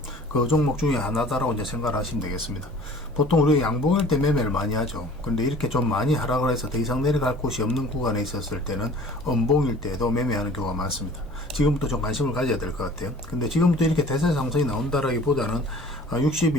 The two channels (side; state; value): both; normal; correlation 0.48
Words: 그 종목 중에 하나다라고 이제 생각을 하시면 되겠습니다. 보통 우리가 양봉일 때 매매를 많이 하죠. 근데 이렇게 좀 많이 하락을 해서 더 이상 내려갈 곳이 없는 구간에 있었을 때는 음봉일 때도 매매하는 경우가 많습니다. 지금부터 좀 관심을 가져야 될 것 같아요. 근데 지금부터 이렇게 대세 상승이 나온다라기보다는